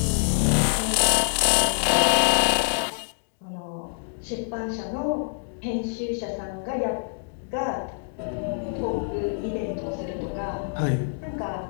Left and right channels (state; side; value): silent; right; digital silence